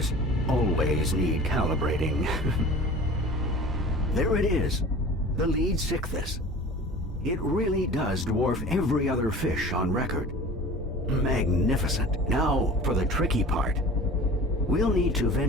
always need calibrating. There it is, the lead Sichthys. It really does dwarf every other fish on record. Magnificent. Now for the tricky part. We'll need to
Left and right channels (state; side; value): normal; both; correlation 0.40